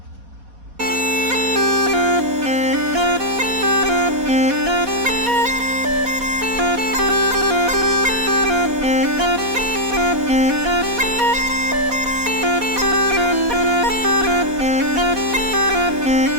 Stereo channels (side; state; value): left; late; 4.1 ms